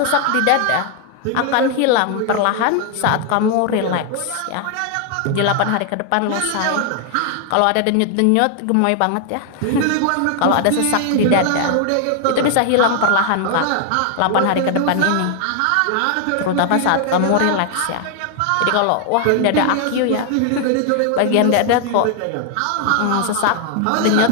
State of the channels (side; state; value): both; different; correlation 0.00